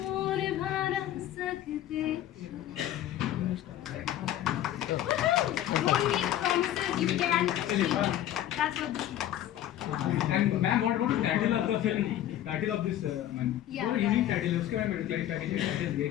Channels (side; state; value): right; quieter; 12.3 dB